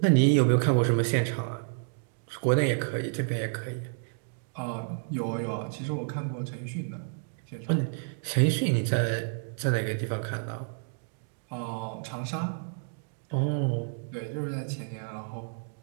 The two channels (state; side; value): silent; left; digital silence